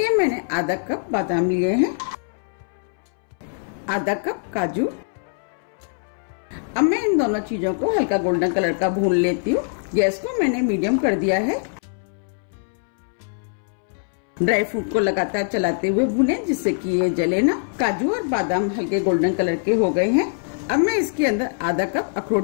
मैंने आधा कप बादाम लिए हैं, आधा कप काजू। अब मैं इन दोनों चीजों को हल्का गोल्डन कलर का भून लेती हूँ। गैस को मैंने मीडियम कर दिया है। ड्राई फ्रूट को लगातार चलाते हुए भूनें जिससे कि ये जले ना। काजू और बादाम हल्के गोल्डन कलर के हो गए हैं। अब मैं इसके अंदर आधा कप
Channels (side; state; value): right; silent; 64 dB below the other